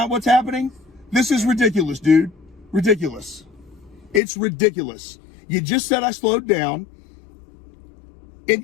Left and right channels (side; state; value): right; drops out; at 4.2 s